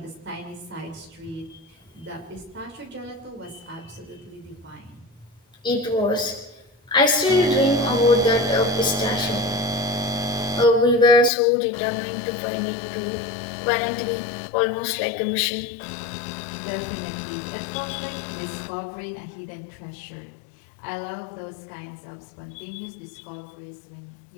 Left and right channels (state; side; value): drops out; right; at 11.3 s